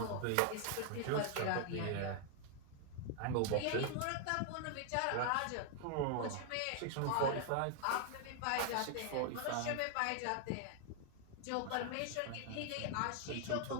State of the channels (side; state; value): both; different; correlation 0.00